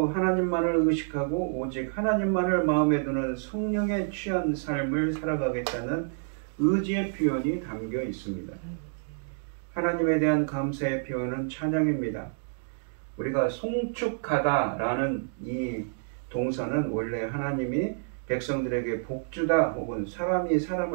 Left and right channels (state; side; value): silent; left; digital silence